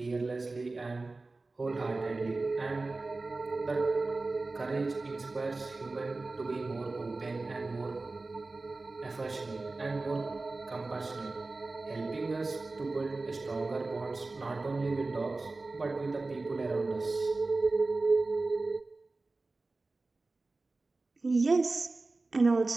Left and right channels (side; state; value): left; quieter; 3.4 dB